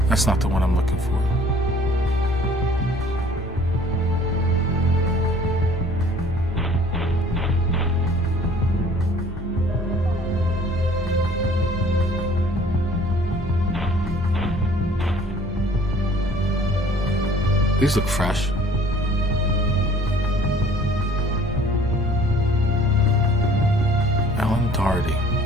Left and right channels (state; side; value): normal; both; correlation 0.53